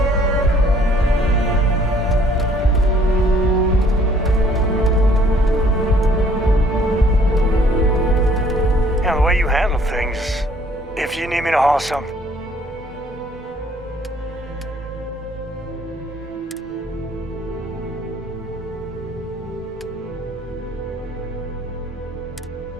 If you need me to haul something.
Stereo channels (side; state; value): both; normal; correlation 0.60